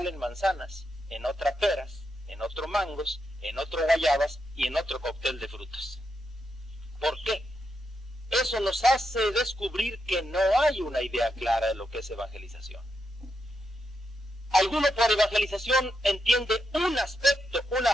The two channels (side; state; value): both; normal; correlation 0.84